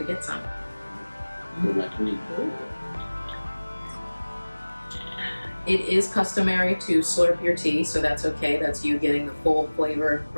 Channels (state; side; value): inverted; both; correlation -1.00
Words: get some. For my queen. It is customary to slurp your tea, so that's okay. That's you getting the full flavor